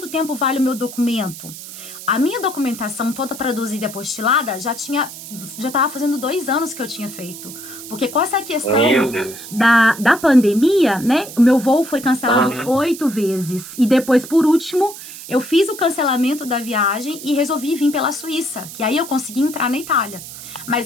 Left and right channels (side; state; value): right; noise; hiss, 13 dB below the sound